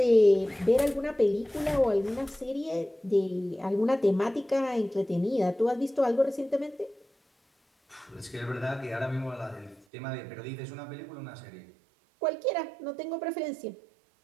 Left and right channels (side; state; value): left; drops out; at 9.9 s